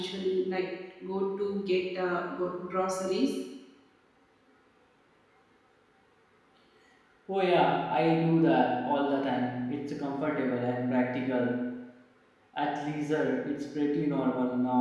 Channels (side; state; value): both; identical; correlation 1.00